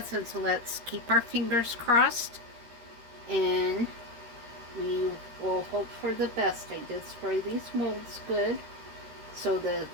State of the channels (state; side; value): late; left; 13 ms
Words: so let's keep our fingers crossed. And we will hope for the best. I did spray these molds good. So the